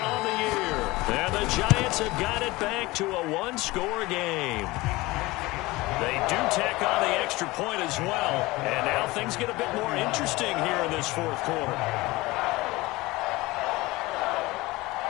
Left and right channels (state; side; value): quieter; right; 20.9 dB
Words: the year. And the Giants have got it back to a 1-score game. They do tack on the extra point as well. And now things get a bit more interesting here in this 4th quarter.